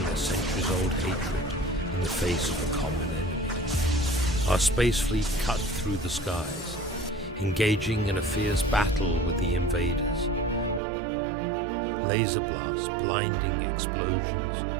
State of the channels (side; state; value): left; drops out; at 10.8 s